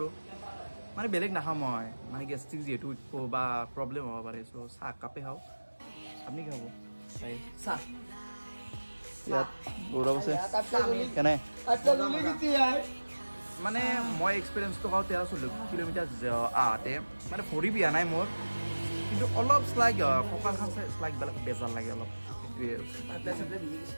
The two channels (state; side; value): inverted; both; correlation -1.00